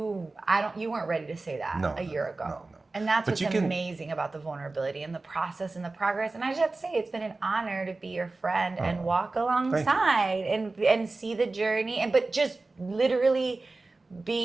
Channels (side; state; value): left; quieter; 3.4 dB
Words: weren't ready to say that a year ago. No. And that's what's amazing about the vulnerability and the process and the progress. And I just have to say, it's been an honor to be your friend and walk alongside and see the journey. But just literally